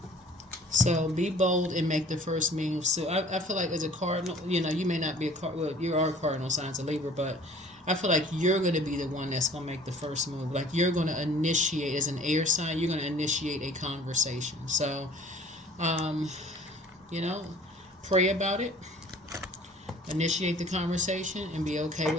So be bold and make the first move. So I feel like as a cardinal, you may not be a cardinal. Well, you are a cardinal signs of Libra, but I feel like you're going to be the one that's going to make the first move. Like you're going to initiate, as an air sign, you're going to initiate a conversation. So, pray about it. Initiate the conversation and be okay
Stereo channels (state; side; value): normal; both; correlation 0.50